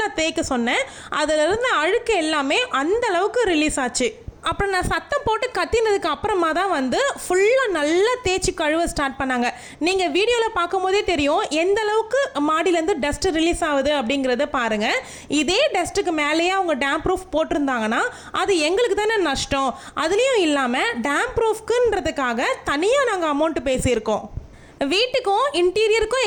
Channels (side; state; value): both; identical; correlation 1.00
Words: தேய்க்க சொன்னேன். அதில் இருந்த அழுக்கு எல்லாமே அந்த அளவுக்கு ரிலீஸ் ஆச்சு. அப்புறம் நான் சத்தம் போட்டு கத்தினதுக்கு அப்புறமா தான் வந்து ஃபுல்லாக நல்லா தேய்ச்சி கழுவ ஸ்டார்ட் பண்ணாங்க. நீங்கள் வீடியோவில் பார்க்கும்போதே தெரியும் எந்த அளவுக்கு மாடியிலேருந்து டஸ்ட் ரிலீஸ் ஆகுது அப்படிங்கிறத பாருங்கள். இதே டஸ்ட்டுக்கு மேலேயே அவங்க டேம் ப்ரூஃப் போட்டிருந்தாங்கன்னா அது எங்களுக்கு தானே நஷ்டம். அதுலேயும் இல்லாமல் டேம் ப்ரூஃப்க்குன்றதுக்காக தனியாக நாங்கள் அமௌண்ட்டு பேசியிருக்கோம். வீட்டுக்கும் இன்டீரியருக்கும்